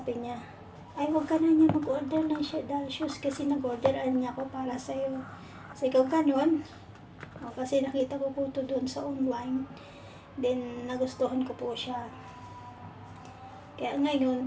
niya, ay huwag ka na niya mag-order ng doll shoes kasi nag-orderan niya ako para sa'yo. Kasi ikaw ganun. Kasi nakita ko po ito doon sa online. Then nagustuhan ko po siya. Kaya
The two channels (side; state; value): both; identical; correlation 1.00